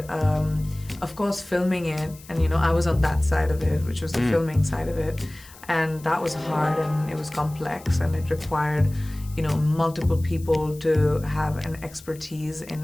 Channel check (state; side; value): noise; left; hiss, 21 dB below the sound